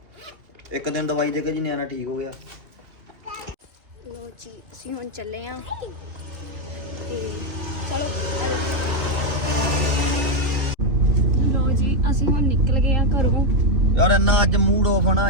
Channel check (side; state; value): left; late; 2.8 ms